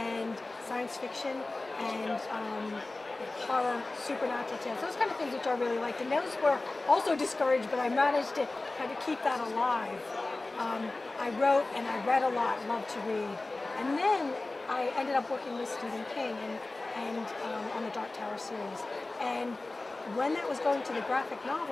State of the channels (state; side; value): quieter; right; 3.1 dB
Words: science fiction and horror, supernatural tales, those kind of things which I really liked. And those were also discouraged, but I managed to kind of keep that alive. I wrote and I read a lot, loved to read. And then I ended up working with Stephen King and on the Dark Tower series. And when that was going to the graphic